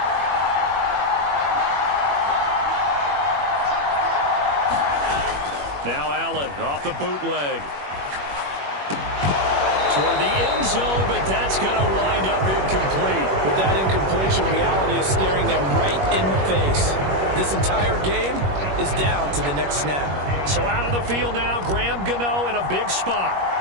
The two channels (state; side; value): late; left; 21 ms